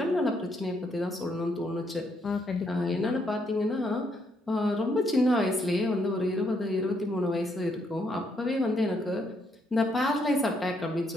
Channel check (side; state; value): both; normal; correlation 0.74